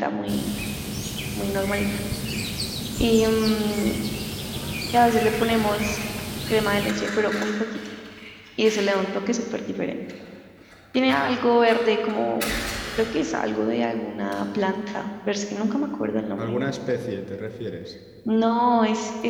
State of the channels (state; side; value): identical; both; correlation 1.00